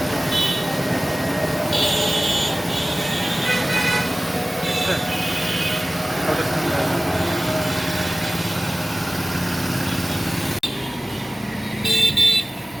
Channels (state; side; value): normal; both; correlation 0.97